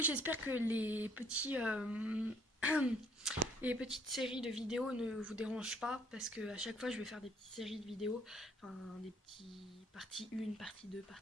j'espère que les petites séries de vidéos ne vous dérangent pas, parce que à chaque fois, je vais faire des petites séries de vidéos, enfin, des petits partie 1, partie 2,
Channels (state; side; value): normal; both; correlation 0.63